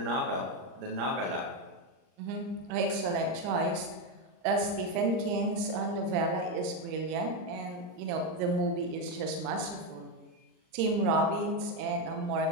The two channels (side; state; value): left; late; 39 ms